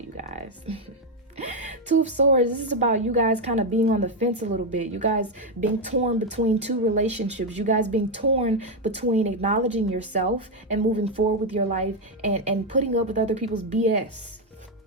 guys. Two of Swords, this is about you guys kind of being on the fence a little bit. You guys being torn between two relationships. You guys being torn between acknowledging yourself and moving forward with your life and putting up with other people's BS.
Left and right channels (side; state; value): both; normal; correlation 0.04